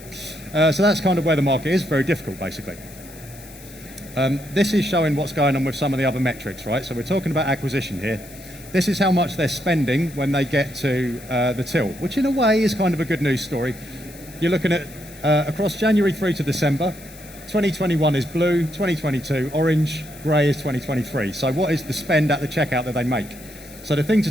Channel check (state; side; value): noise; left; hiss, 19 dB below the sound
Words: So that's kind of where the market is. Very difficult, basically. This is showing what's going on with some of the other metrics, right? So we're talking about acquisition here. This is how much they're spending when they get to the till, which in a way is kind of a good news story. You're looking at across January through to December. 2021 is blue, 2022 orange, grey is 2023. So what is the spend at the checkout that they make? So the thing to